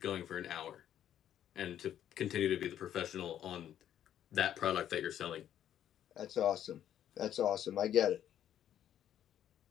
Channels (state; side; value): quieter; right; 10.6 dB